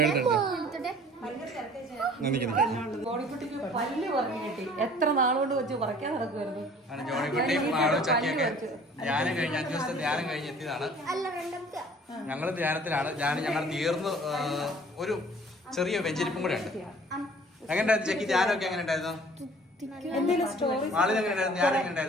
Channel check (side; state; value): both; normal; correlation 0.51